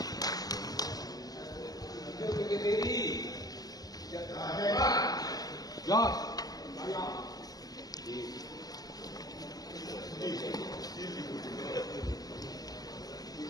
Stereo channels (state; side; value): late; right; 0.18 ms